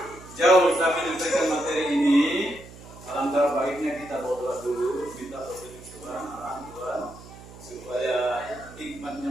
jauh kami menyampaikan materi ini, alangkah baiknya kita berdoa dulu, minta petunjuk Tuhan, arahan Tuhan, supaya hikmat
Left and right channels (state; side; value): noise; right; hum, 18 dB below the sound